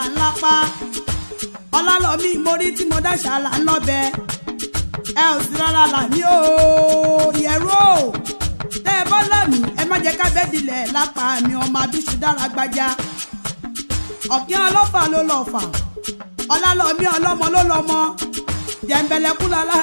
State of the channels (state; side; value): inverted; both; correlation -1.00